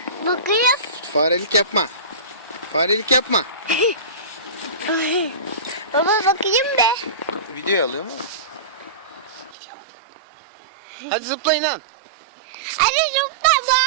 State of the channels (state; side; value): drops out; left; at 9.6 s